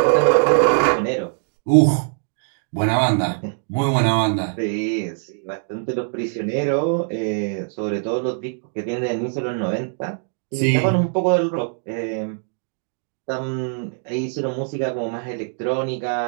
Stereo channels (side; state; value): left; silent; 64 dB below the other